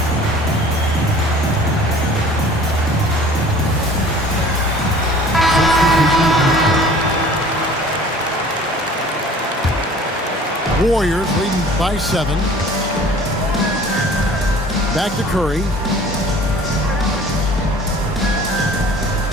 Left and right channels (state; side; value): normal; both; correlation 0.48